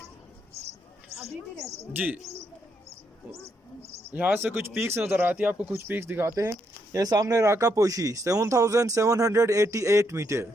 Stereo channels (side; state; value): both; normal; correlation 0.77